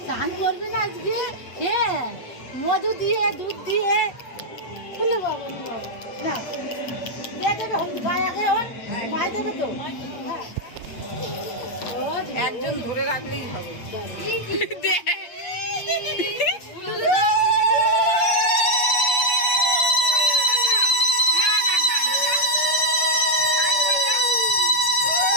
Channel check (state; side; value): late; right; 8.4 ms